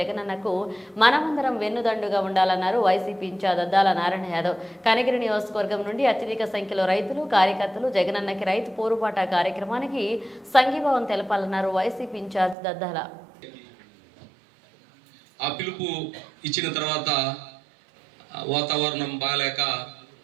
మనమందరం వెన్నుదండుగా ఉండాలన్నారు వైసీపీ ఇన్ఛార్జ్ దద్దాల నారాయణ యాదవ్. కనిగిరి నియోజకవర్గం నుండి అత్యధిక సంఖ్యలో రైతులు కార్యకర్తలు జగనన్నకి రైతు పోరుబాట కార్యక్రమానికి సంఘీభావం తెలపాలన్నారు వైసీపీ ఇన్ఛార్జ్ దద్దాల. ఆ పిలుపు ఇచ్చిన తర్వాత వాతావరణం బాగాలేక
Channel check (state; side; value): drops out; left; at 12.6 s